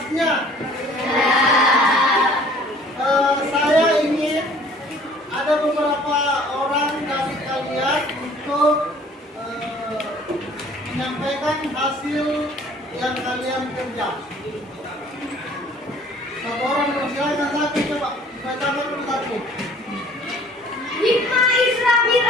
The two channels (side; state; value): both; normal; correlation 0.53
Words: Saya ingin ada beberapa orang dari kalian untuk menyampaikan hasil yang kalian kerja. Satu orang silakan, satu coba bacakan dulu satu. Hikmah Isra